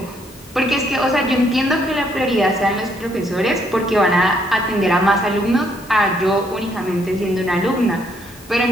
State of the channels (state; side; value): normal; both; correlation 0.71